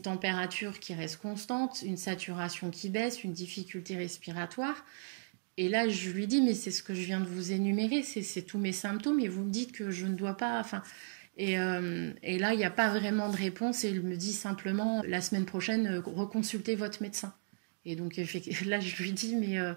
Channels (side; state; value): left; silent; digital silence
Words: température qui reste constante, une saturation qui baisse, une difficulté respiratoire. Et là, je lui dis, mais c'est ce que je viens de vous énumérer, c'est tous mes symptômes, et vous me dites que je ne dois pas... Et là, il n'y a pas vraiment de réponse, et il me dit simplement, la semaine prochaine, reconsultez votre médecin. Et donc là, je lui dis, mais